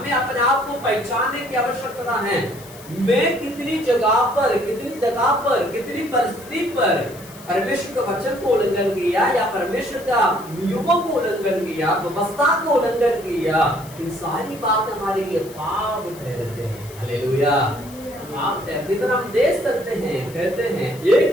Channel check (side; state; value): left; noise; hiss, 20 dB below the sound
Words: अपने आप को पहचानने की आवश्यकता है। मैं कितनी जगह पर, कितनी परिस्थिति पर परमेश्वर का वचन को उल्लंघन किया या परमेश्वर का नियमों को उल्लंघन किया, व्यवस्था को उल्लंघन किया, इन सारी बातें हमारे लिए पाप ठहरते हैं। हालेलुया, पाप ठहरते। तो हम देख सकते हैं, कहते हैं